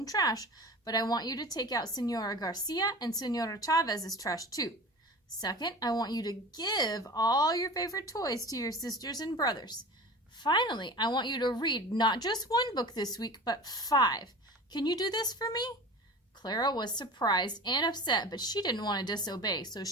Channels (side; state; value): both; normal; correlation 0.35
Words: trash, but I want you to take out Senora Garcia and Senora Chavez's trash too. Second, I want you to give all your favorite toys to your sisters and brothers. Finally, I want you to read not just 1 book this week, but 5. Can you do this for me?" Clara was surprised and upset, but she didn't want to disobey, so